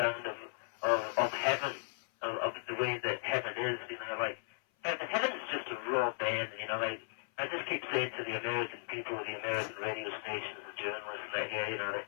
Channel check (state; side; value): silent; right; 54 dB below the other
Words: of heaven, of the way that heaven is. You know, like heaven's just a raw band. You know, like I just keep saying to the American people, the American radio stations, the journalists, that here, you know, that